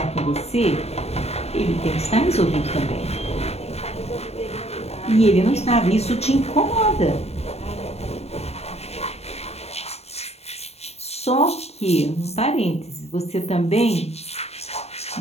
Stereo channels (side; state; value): right; late; 0.30 ms